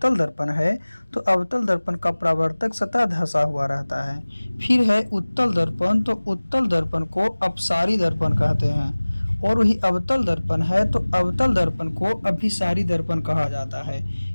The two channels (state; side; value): inverted; both; correlation -1.00